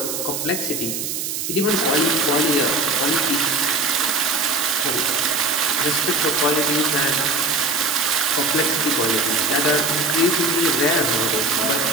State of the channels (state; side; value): noise; right; hiss, 4 dB below the sound